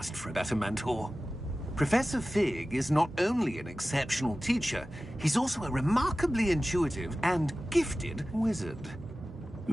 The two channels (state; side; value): normal; both; correlation 0.96